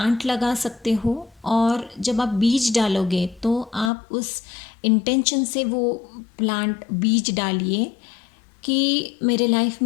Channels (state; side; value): drops out; right; at 3.9 s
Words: लगा सकते हो, और जब आप बीज डालोगे तो आप उस इंटेंशन से वो प्लांट बीज डालिए कि मेरे लाइफ